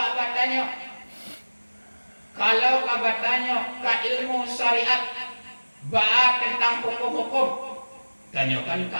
bertanya. Kalau kau bertanya ke ilmu syariat, ba'a tentang hukum-hukum, tanyakan ke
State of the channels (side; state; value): both; inverted; correlation -1.00